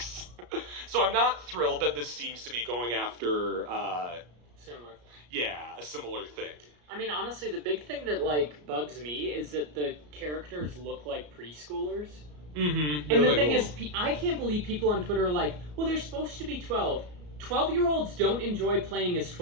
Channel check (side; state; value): left; late; 34 ms